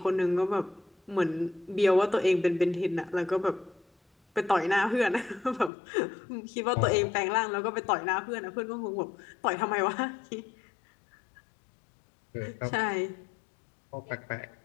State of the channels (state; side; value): drops out; right; at 5.7 s